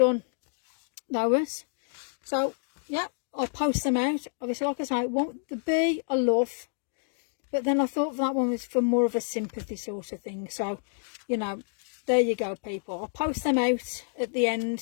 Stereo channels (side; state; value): right; silent; digital silence